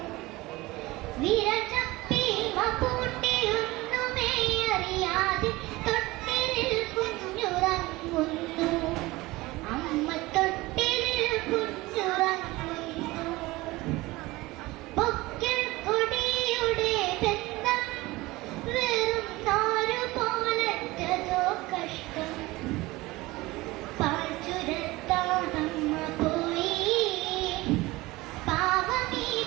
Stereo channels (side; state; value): left; quieter; 20.3 dB